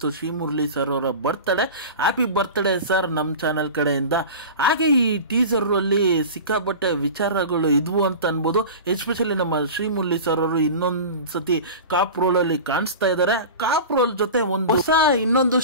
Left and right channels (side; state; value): both; inverted; correlation -0.32